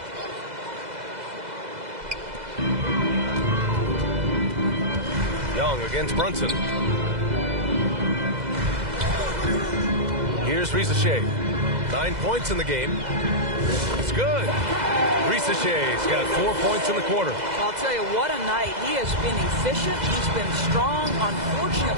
Young against Brunson. Here's Risacher. 9 points in the game. It's good. Risachet's got 4 points in the quarter. I'll tell you, what a night. He has been efficient. He's been strong.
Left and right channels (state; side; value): late; left; 2.0 ms